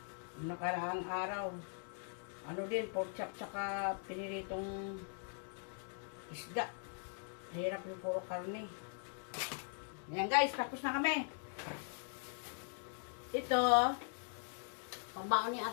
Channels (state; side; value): silent; right; 50 dB below the other